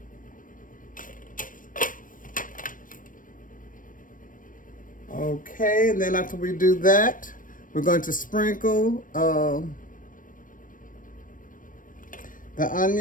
Okay, and then after we do that, we're going to sprinkle the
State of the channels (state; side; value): late; right; 0.39 ms